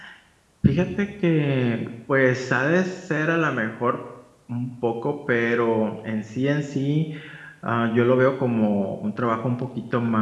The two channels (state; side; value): identical; both; correlation 1.00